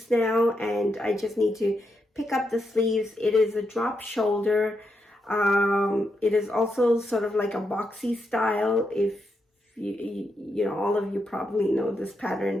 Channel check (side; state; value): both; normal; correlation 0.83